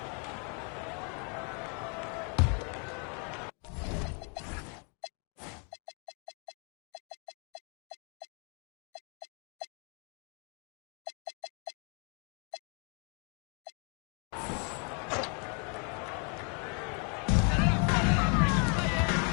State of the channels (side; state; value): right; quieter; 37.9 dB